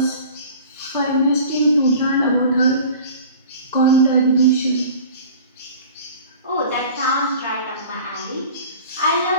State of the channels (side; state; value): both; inverted; correlation -0.42